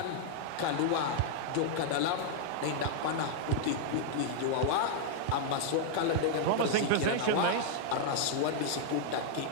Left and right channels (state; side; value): different; both; correlation -0.01